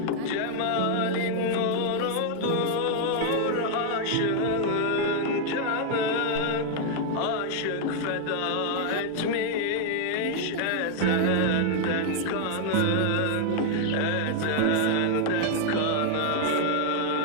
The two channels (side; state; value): both; different; correlation 0.00